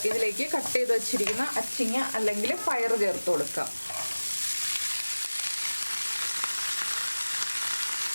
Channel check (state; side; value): inverted; both; correlation -1.00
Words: ഇതിലേക്ക് കട്ട് ചെയ്ത് വെച്ചിരിക്കുന്ന അച്ചിങ്ങ അല്ലെങ്കിൽ പയർ ചേർത്ത് കൊടുക്കാം.